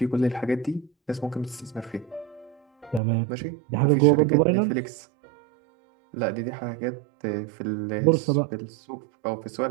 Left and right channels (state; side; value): drops out; left; at 3.0 s